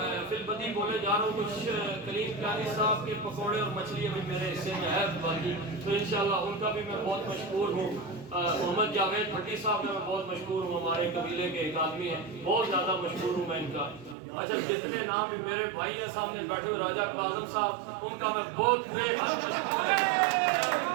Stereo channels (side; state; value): left; drops out; at 14.2 s